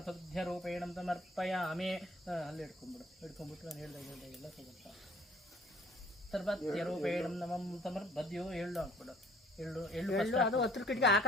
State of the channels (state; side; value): normal; both; correlation 0.55